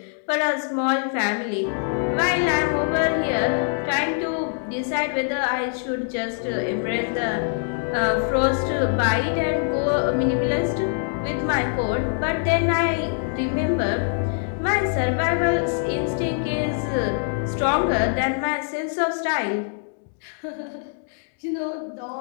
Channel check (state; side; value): silent; right; digital silence